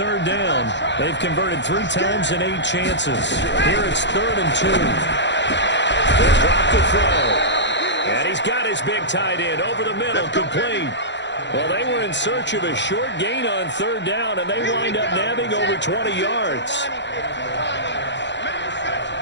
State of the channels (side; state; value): right; late; 0.52 ms